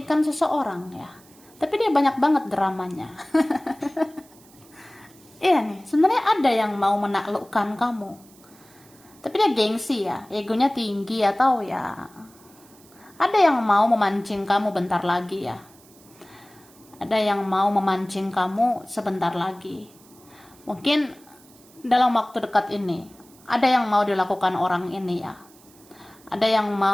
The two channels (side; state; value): right; noise; hiss, 26 dB below the sound